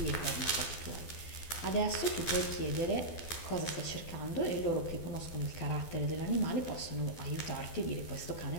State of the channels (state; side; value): late; right; 12 ms